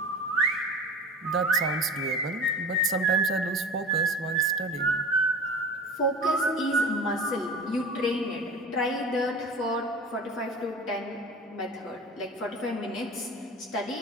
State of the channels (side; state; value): both; normal; correlation 0.36